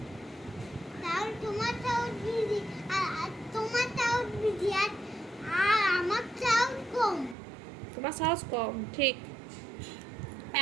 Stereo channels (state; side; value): drops out; left; at 7.4 s